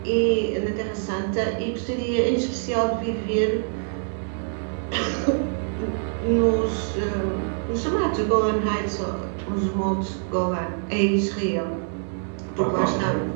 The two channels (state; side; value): silent; left; 62 dB below the other